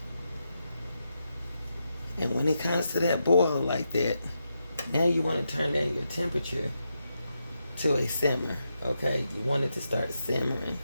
And when it comes to that boil like that, now you want to turn down your temperature to a simmer. Okay? You want it to start simmering.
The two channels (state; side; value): inverted; both; correlation -0.85